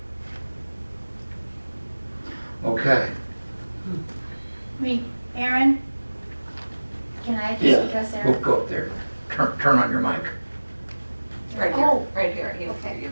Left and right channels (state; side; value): inverted; both; correlation -1.00